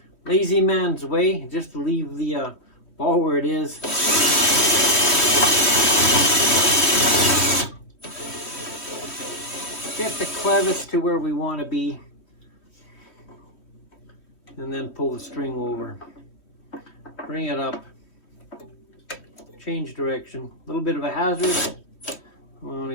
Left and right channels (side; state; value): right; late; 2.9 ms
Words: Lazy man's way, just to leave the ball where it is. Get the clevis to where we want to be, and then pull the string over. Bring it up, change direction. A little bit of a hazard. I want